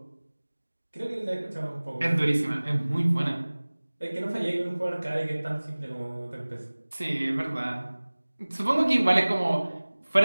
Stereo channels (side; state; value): both; inverted; correlation -1.00